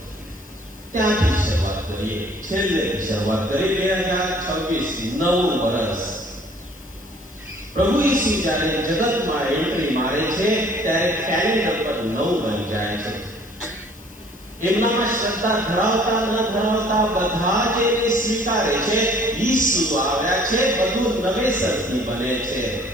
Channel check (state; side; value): noise; left; hiss, 23 dB below the sound